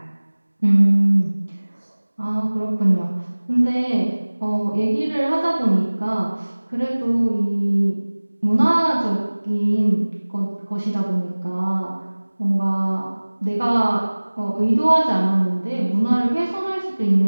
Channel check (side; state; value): both; inverted; correlation -1.00